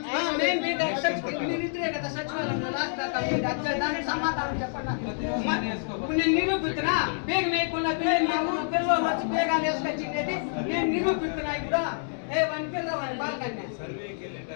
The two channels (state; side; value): silent; right; digital silence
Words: మీరిద్దరే కదా సచివాలయంలో రాష్ట్ర దానికి సమాధానం చెప్పండి. ఇప్పుడు నేను నిరూపిస్తున్నా బేగ వేయకుండా పిల్లలు వచ్చి బేగాలు వేసుకొచ్చింది నేను నిరూపిస్తున్నా. ఇప్పుడు వన్ పిల్ల బాలకన్య